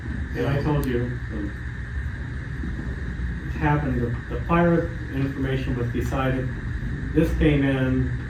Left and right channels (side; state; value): both; identical; correlation 1.00